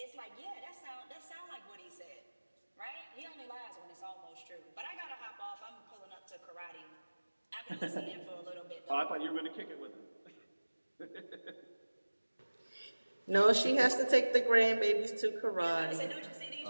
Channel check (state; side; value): inverted; both; correlation -1.00